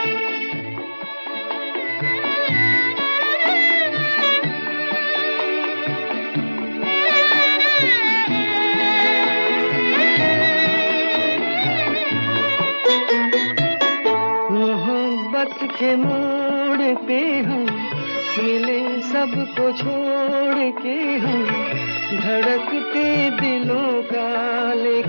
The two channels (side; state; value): both; inverted; correlation -1.00